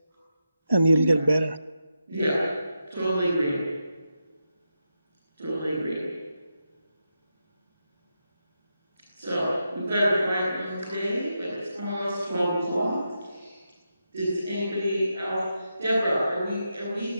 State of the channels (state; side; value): inverted; both; correlation -0.86